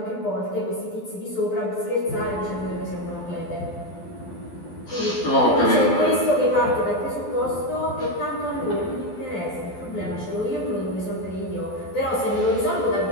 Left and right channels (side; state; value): right; late; 12 ms